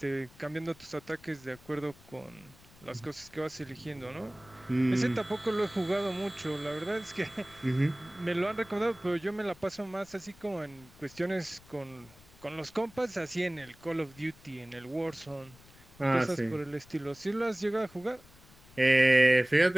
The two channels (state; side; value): noise; left; rumble, 24 dB below the sound